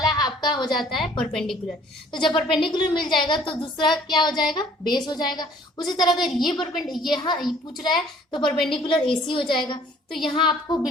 आपका हो जाता है परपेंडिकुलर। तो जब परपेंडिकुलर मिल जाएगा तो दूसरा क्या हो जाएगा बेस हो जाएगा। उसी तरह अगर ये यहाँ पूछ रहा है तो परपेंडिकुलर AC हो जाएगा। तो यहाँ आपको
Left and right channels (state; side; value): normal; both; correlation 0.56